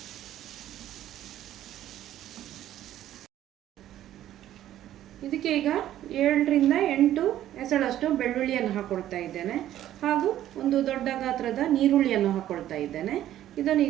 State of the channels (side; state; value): left; quieter; 12.5 dB